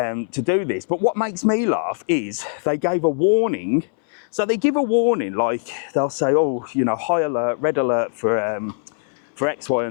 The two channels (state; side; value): silent; right; 63 dB below the other